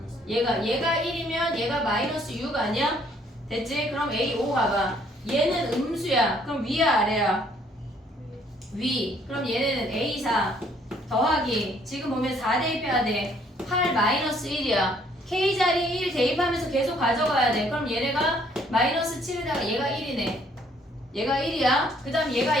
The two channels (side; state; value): both; normal; correlation 0.64